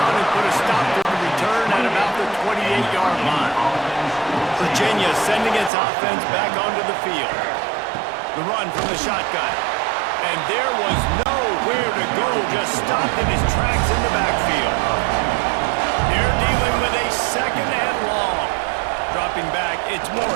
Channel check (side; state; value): left; drops out; at 5.7 s